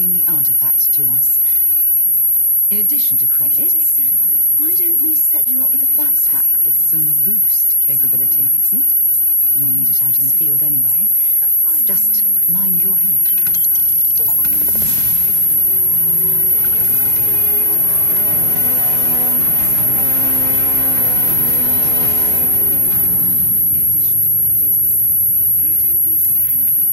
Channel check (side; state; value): left; late; 2.0 ms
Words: the artifact to us. In addition to credits, why don't we set you up with a backpack with some boost capability? You'll need it out in the field anyway. Just mind your head. In addition to credits, why don't we set you up